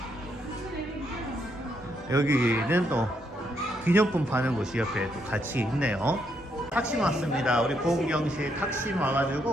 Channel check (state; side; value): normal; both; correlation 0.76